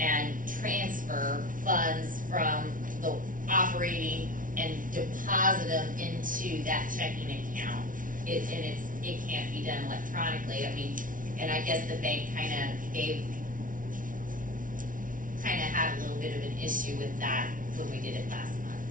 transfer funds from the operating and deposit them into that checking account. It can't be done electronically. I mean, and I guess the bank kinda had a little bit of an issue with that when we did it last month.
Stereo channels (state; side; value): late; left; 0.39 ms